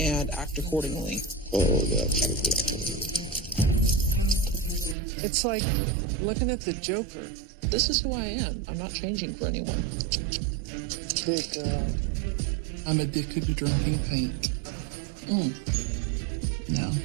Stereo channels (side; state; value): left; drops out; at 5.0 s